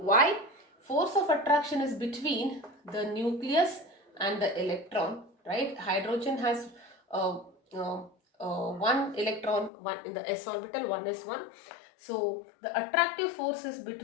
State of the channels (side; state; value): right; drops out; at 9.7 s